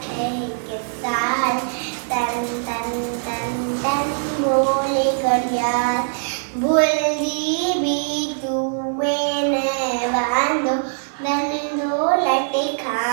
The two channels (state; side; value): silent; left; digital silence